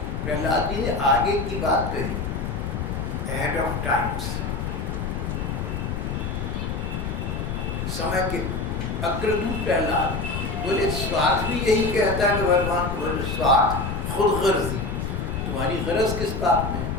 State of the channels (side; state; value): left; noise; rumble, 3 dB below the sound